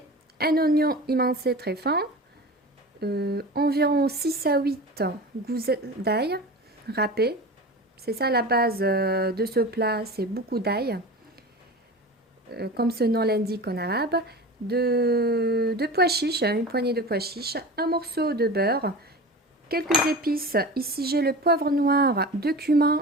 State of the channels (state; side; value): normal; both; correlation 0.33